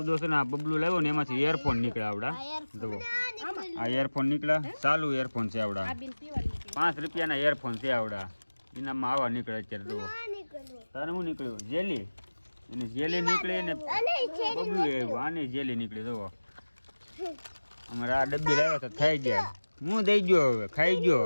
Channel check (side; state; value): both; inverted; correlation -1.00